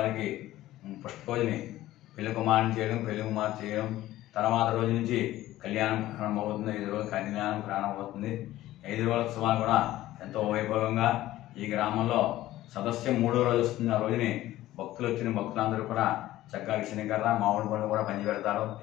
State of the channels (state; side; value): quieter; right; 15.2 dB